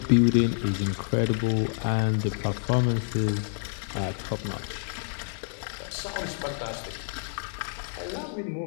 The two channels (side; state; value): right; silent; digital silence